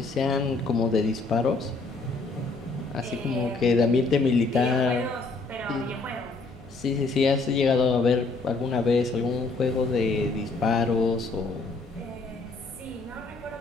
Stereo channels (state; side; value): quieter; right; 3.7 dB